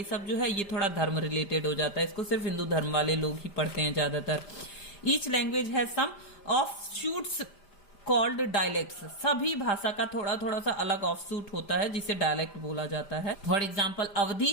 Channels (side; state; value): right; late; 5.0 ms